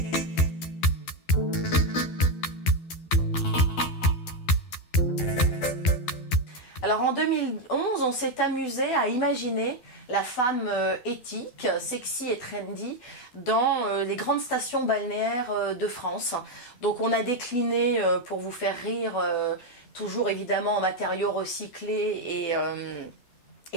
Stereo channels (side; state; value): right; late; 12 ms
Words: Alors en 2011, on s'est amusé à imaginer la femme éthique, sexy et trendy dans les grandes stations balnéaires de France. Donc on a décliné, pour vous faire rire, toujours évidemment en matériaux recyclés